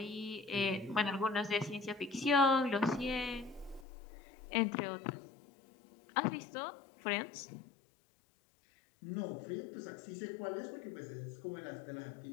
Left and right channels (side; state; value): right; drops out; at 3.9 s